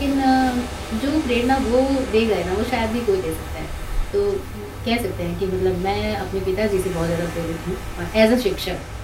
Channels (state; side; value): identical; both; correlation 1.00